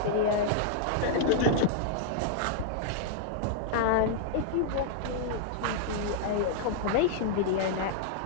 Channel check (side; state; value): both; different; correlation -0.01